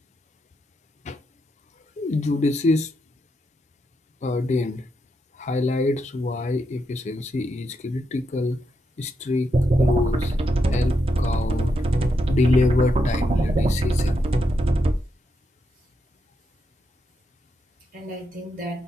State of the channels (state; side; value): normal; both; correlation 0.82